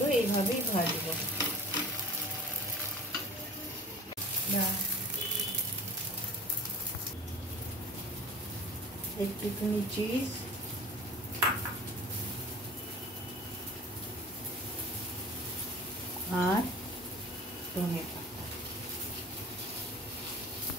এইভাবেই ভাজবো। একটুখানি চিজ, আর ধনে পাতা।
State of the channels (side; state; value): both; normal; correlation 0.41